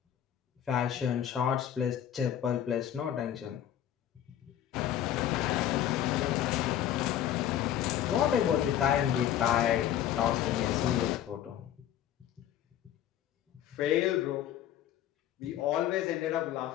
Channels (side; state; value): right; quieter; 11.1 dB